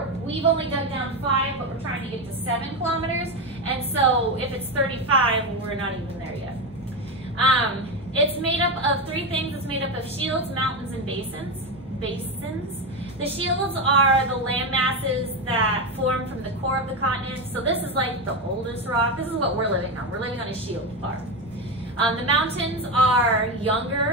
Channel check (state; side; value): normal; both; correlation 0.14